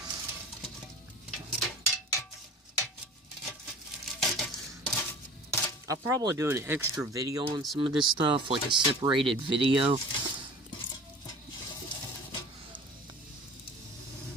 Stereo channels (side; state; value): both; normal; correlation 0.41